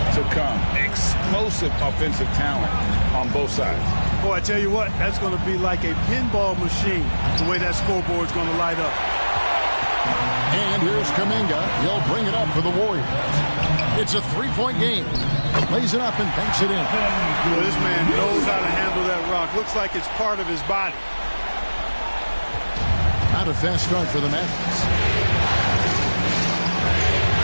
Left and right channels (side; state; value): both; inverted; correlation -1.00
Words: to come. Explosive offensive talent on both sides. Boy, I tell you what, that's going to be like a pinball machine, the way that scoreboard's going to light up. And here's Kuminga. He'll bring it up for the Warriors. It's a 3-point game. Lays it up and banks it in. Well, this man knows how to handle that rock. Looks like it's part of his body. Not a fast start for the Mavericks.